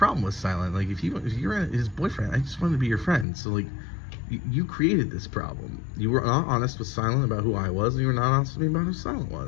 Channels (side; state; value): right; drops out; at 3.2 s